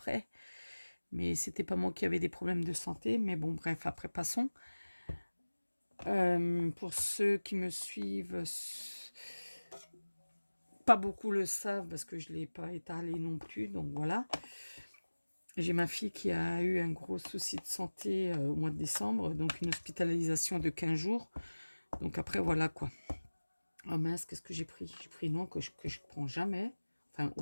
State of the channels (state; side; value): inverted; both; correlation -1.00